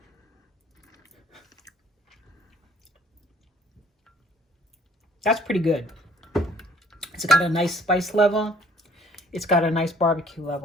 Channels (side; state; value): both; normal; correlation 0.59